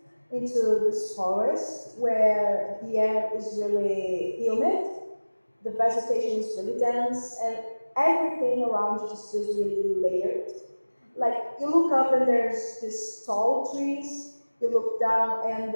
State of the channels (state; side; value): inverted; both; correlation -1.00